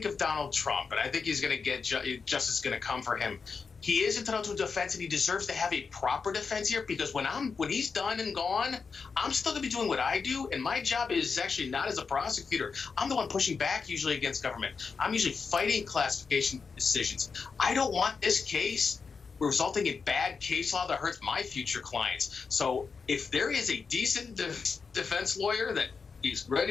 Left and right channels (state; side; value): quieter; right; 5.2 dB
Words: of Donald Trump, and I think he's going to get justice going to come for him, he is entitled to a defense, and he deserves to have a proper defense here, because when he's done and gone, I'm still going to be doing what I do, and my job is actually not as a prosecutor. I'm the one pushing back usually against government. I'm usually fighting classification decisions. I don't want this case resulting in bad case law that hurts my future clients. So if there is a decent defense lawyer that is